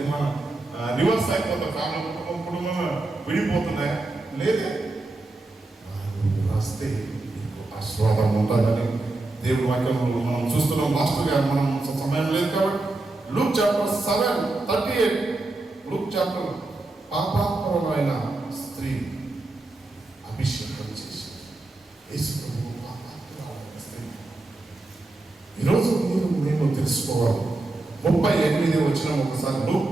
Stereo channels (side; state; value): left; quieter; 3.0 dB